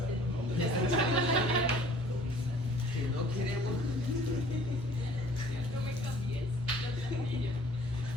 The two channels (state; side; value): normal; both; correlation 0.52